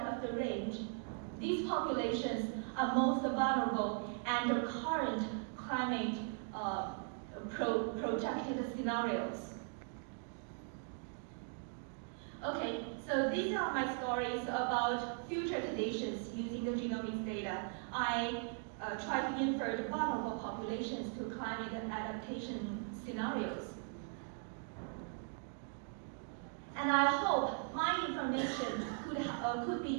the range, these populations are most vulnerable under current climate projected scenarios. Okay, so these are my stories about future conditions using the genomics data. I try to infer the vulnerable populations to climate adaptation scenarios. And I hope my information could be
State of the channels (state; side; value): silent; left; 52 dB below the other